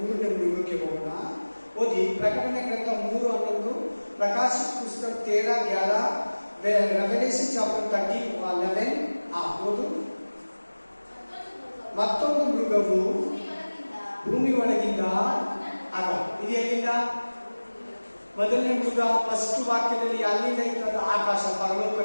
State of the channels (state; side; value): inverted; both; correlation -1.00